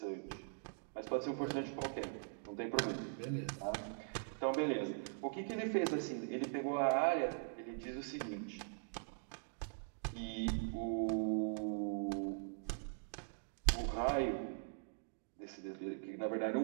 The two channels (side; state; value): left; silent; digital silence